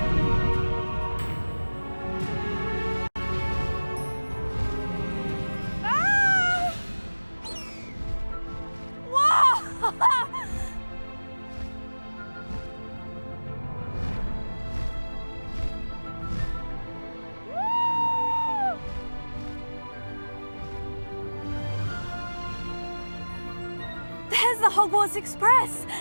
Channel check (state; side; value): inverted; both; correlation -1.00